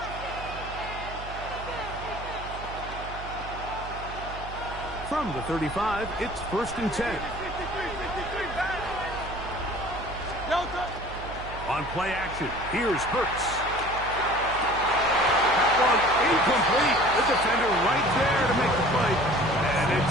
From the 35, it's 1st and 10. On play action, here's Hurts. That one incomplete. The defender right there to make the play. And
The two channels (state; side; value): noise; right; hum, 11 dB below the sound